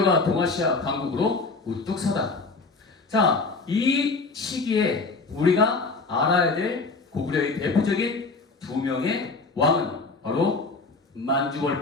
동아시아 강국으로 우뚝 서다. 자, 이 시기에 우리가 알아야 될 고구려의 대표적인 두 명의 왕은 바로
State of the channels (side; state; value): right; quieter; 3.8 dB